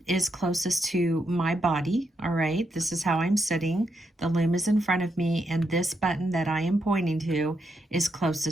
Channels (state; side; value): normal; both; correlation 0.81